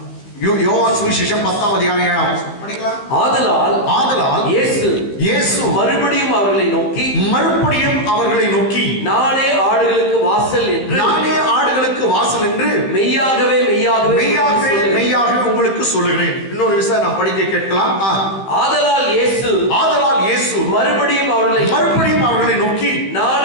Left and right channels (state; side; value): late; right; 15 ms